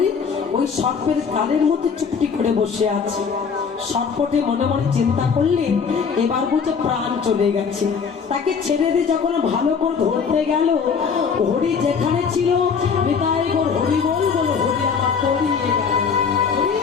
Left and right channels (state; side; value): quieter; right; 6.0 dB